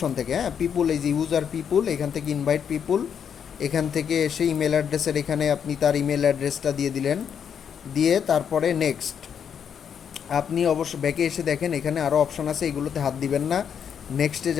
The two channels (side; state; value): right; quieter; 7.8 dB